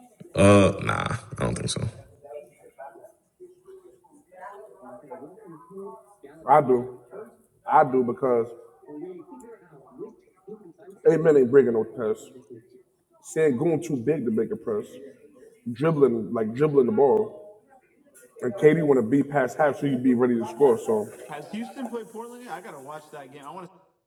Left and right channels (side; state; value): both; identical; correlation 1.00